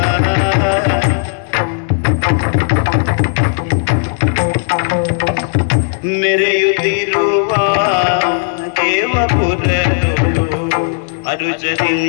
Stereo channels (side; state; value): right; silent; 69 dB below the other